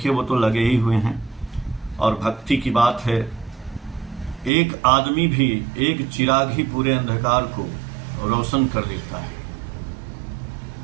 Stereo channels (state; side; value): drops out; left; at 4.5 s